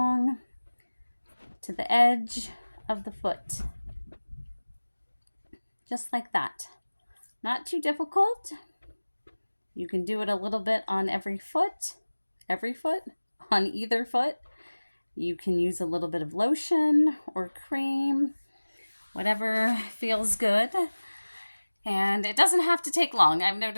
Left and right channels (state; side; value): inverted; both; correlation -1.00